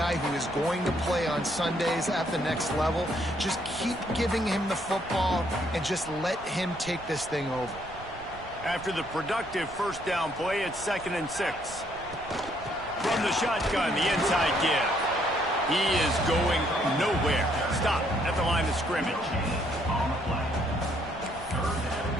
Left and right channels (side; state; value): right; noise; rumble, 17 dB below the sound